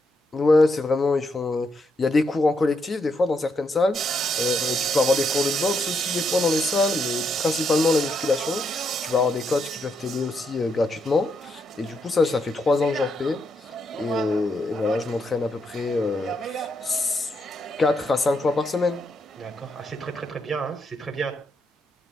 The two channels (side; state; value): both; normal; correlation 0.79